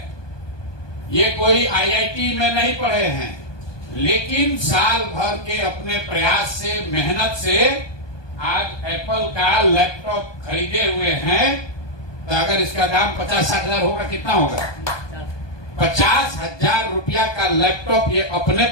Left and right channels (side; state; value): right; late; 1.2 ms